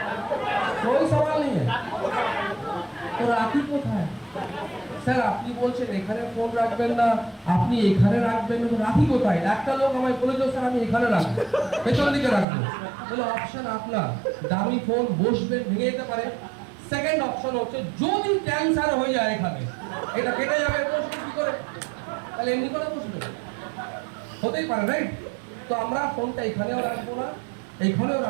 कोई सवाल नहीं है। তো রাখি কোথায়? স্যার আপনি বলছেন এখানে ফোন রাখবেন না, আপনি এখানে রাখবেন না, তো রাখি কোথায়? একটা লোক আমায় বলেছিল স্যার আমি এখানে রাখবো, পেছন দিকে রাখবো। বলে অপশন আপনার, দামি ফোন বসবেন, ভেঙে যেতে পারে। সেকেন্ড অপশন হচ্ছে যদি ক্যান্সার হয়ে যায় এখানে, এটা কেটে যাবে, বসবেন কি করে? তাহলে এমনি করে বসবেন, হতেই পারে, রাইট? তো আমরা ফোনটা এখানেও রাখবো না, এইখানেও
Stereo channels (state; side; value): drops out; left; at 12.5 s